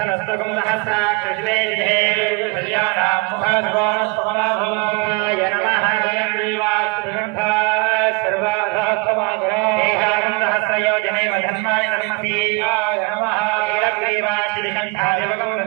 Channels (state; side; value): quieter; left; 28.7 dB